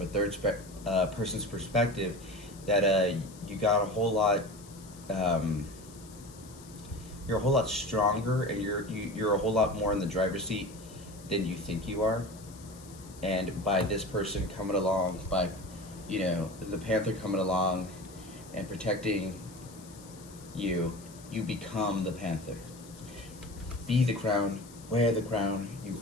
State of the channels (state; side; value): noise; left; hiss, 20 dB below the sound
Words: a third person's perspective, that you got a whole lot, you're a whole lot stronger, and you're a whole lot more in the driver's seat than you think you are. And by this person coming along, by the panther coming along and protecting you, you become the panther. Be the crown, wear the crown, you